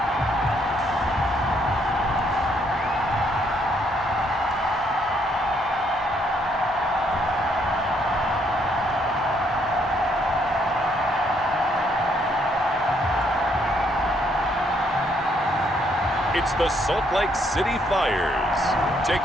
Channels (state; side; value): normal; both; correlation 0.70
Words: It's the Salt Lake City Flyers